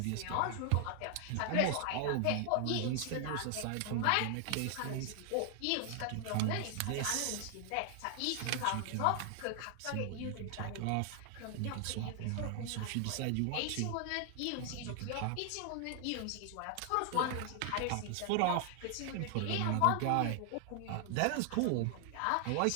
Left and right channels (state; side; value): different; both; correlation 0.00